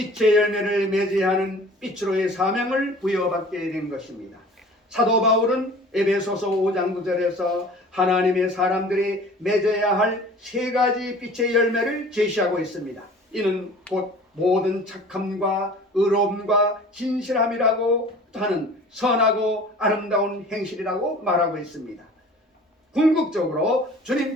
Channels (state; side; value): normal; both; correlation 0.45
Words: 열매를 맺어야 하는 빛으로의 사명을 부여받게 된 것입니다. 사도 바울은 에베소서 5장 9절에서 하나님의 사람들이 맺어야 할 세 가지 빛의 열매를 제시하고 있습니다. 이는 곧 모든 착함과 의로움과 진실함이라고 하는 선하고 아름다운 행실이라고 말하고 있습니다. 궁극적으로